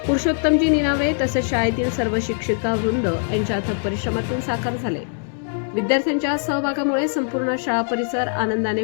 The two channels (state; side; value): silent; right; 64 dB below the other